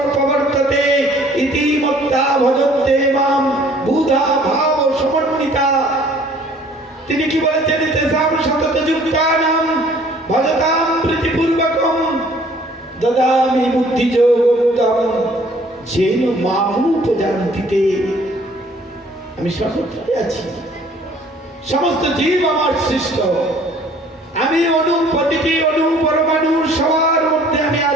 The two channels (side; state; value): both; normal; correlation 0.56